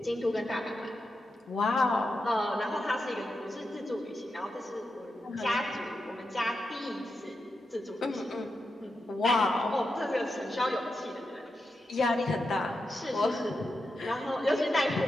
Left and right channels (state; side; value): normal; both; correlation 0.88